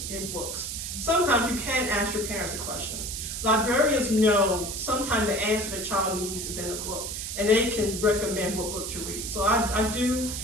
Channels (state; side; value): noise; right; hiss, 5 dB below the sound